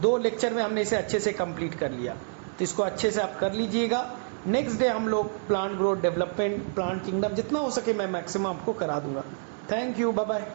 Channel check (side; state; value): left; silent; digital silence